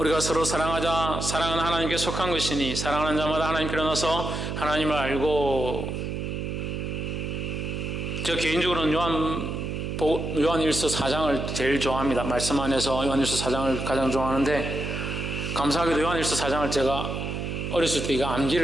서로 사랑하자. 사랑은 하나님께 속한 것이니 사랑하는 자마다 하나님께로 나서 하나님을 알고. 저 개인적으로는 요한일서 4장을 제일 좋아합니다. 말씀 안에서 요한일서 4장을 가장 좋아하는데, 감사하게도 요한일서 4장을 제가 어렸을 때 이거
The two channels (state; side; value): noise; right; hum, 4 dB below the sound